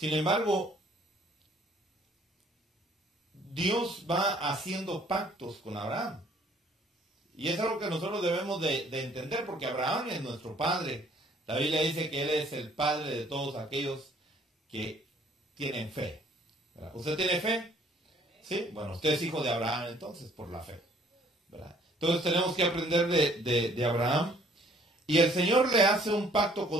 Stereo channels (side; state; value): both; normal; correlation 0.59